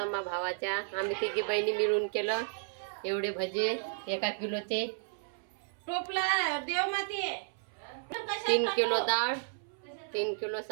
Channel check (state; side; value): silent; left; 56 dB below the other